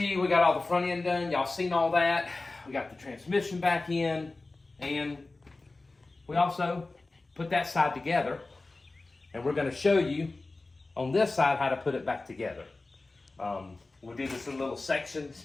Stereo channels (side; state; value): right; quieter; 3.3 dB